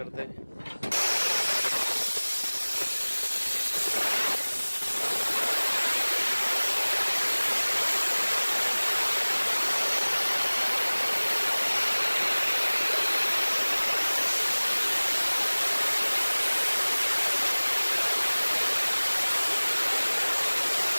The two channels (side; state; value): both; inverted; correlation -1.00